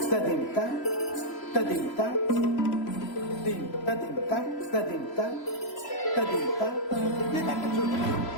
tadim ta tadim ta dim tadim ta tadim ta tadim ta tadim ta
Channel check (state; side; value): late; right; 3.0 ms